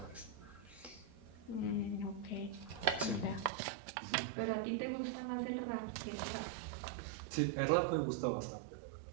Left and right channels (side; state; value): left; drops out; at 3.5 s